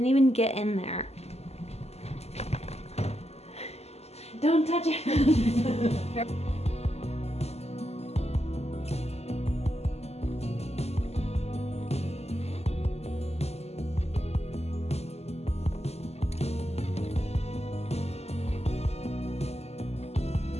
even get in there. Don't touch it.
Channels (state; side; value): late; right; 0.30 ms